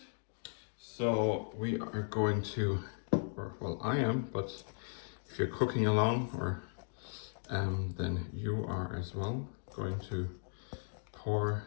So we are going to, or well, I am, but if you're cooking along, or then you are as well, going to pour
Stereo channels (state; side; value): silent; right; digital silence